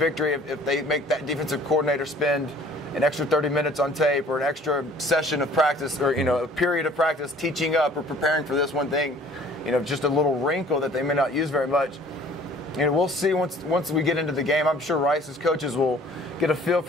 if they make that defensive coordinator spend an extra 30 minutes on tape or an extra session of practice or, a period of practice teaching up or preparing for this one thing, just a little wrinkle that they may not use very much. We'll see once we get into the game. I'm sure Rice's coaches will get a feel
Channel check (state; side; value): normal; both; correlation 0.52